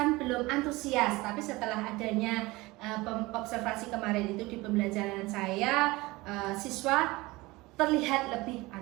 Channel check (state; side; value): quieter; left; 21.3 dB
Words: belum antusias, tapi setelah adanya observasi kemarin itu di pembelajaran saya siswa terlihat lebih